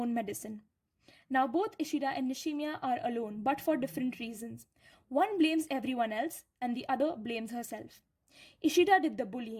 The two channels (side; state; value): both; identical; correlation 1.00